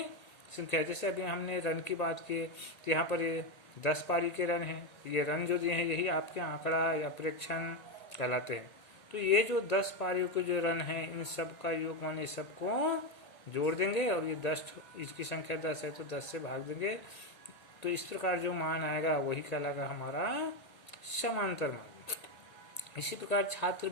संख्या। जैसे अभी हमने रन की बात की, तो यहाँ पर ये 10 पारी के रन हैं। ये रन जो दिए हैं यही आपके आंकड़ा या प्रेक्षण कहलाते हैं। तो ये जो 10 पारियों के जो रन हैं इन सब का योग माने सबको जोड़ देंगे और ये 10, इसकी संख्या 10 है तो 10 से भाग देंगे। तो इस प्रकार जो मान आएगा वही कहलाएगा हमारा समांतर मान। इसी प्रकार छात्र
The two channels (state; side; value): late; right; 1.9 ms